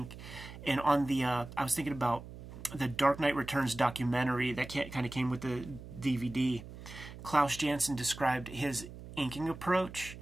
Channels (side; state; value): right; noise; hum, 14 dB below the sound